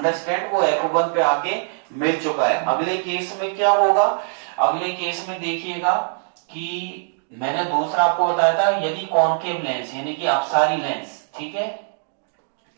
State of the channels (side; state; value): left; silent; digital silence